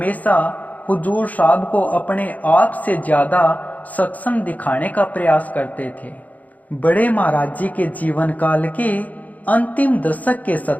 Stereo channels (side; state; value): right; late; 0.077 ms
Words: हुजूर साहब को अपने आप से ज्यादा सक्षम दिखाने का प्रयास करते थे। बड़े महाराज जी के जीवन काल के अंतिम दशक के